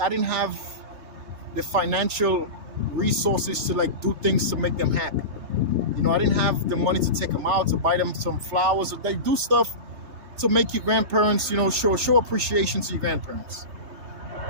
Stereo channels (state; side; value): late; left; 3.2 ms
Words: didn't have the financial resources to, like, do things to make them happy. You know, I didn't have the money to take them out, to buy them some flowers, or they do stuff to make your grandparents, you know, show appreciation to your grandparents.